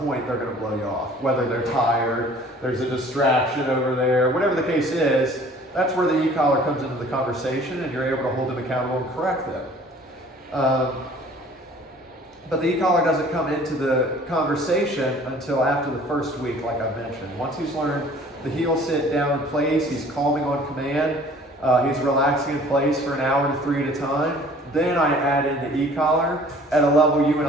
they're going to blow you off. Whether they're tired, there's a distraction over there, whatever the case is, that's where the e-collar comes into the conversation and you're able to hold them accountable and correct them. But the e-collar doesn't come into the conversation until after the first week, like I mentioned. Once he's learned the heel sit down in place, he's calming on command, he's relaxing in place for an hour to 3 at a time, then I add in the e-collar at a level you and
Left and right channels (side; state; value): both; normal; correlation 0.51